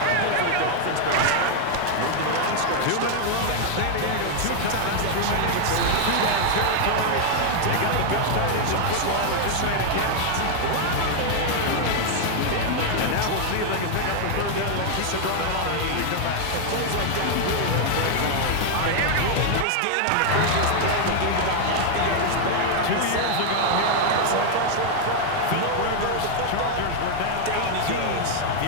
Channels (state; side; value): different; both; correlation 0.00